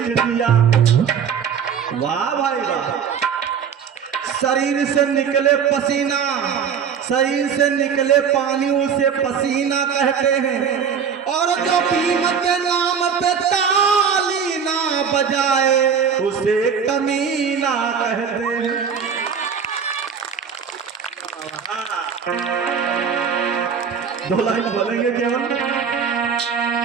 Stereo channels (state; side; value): quieter; left; 7.0 dB